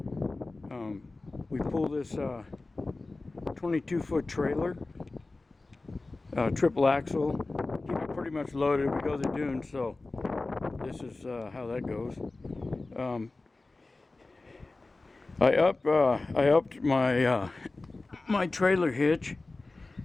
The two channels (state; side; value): quieter; right; 3.3 dB